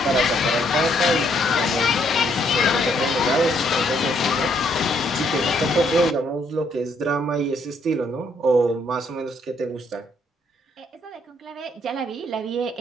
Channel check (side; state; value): both; normal; correlation 0.70